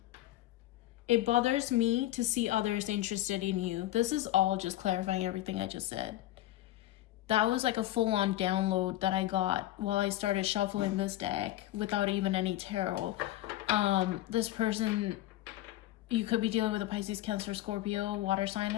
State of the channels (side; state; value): right; quieter; 15.0 dB